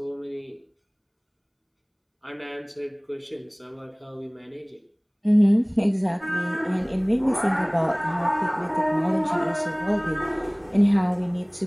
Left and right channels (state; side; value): identical; both; correlation 1.00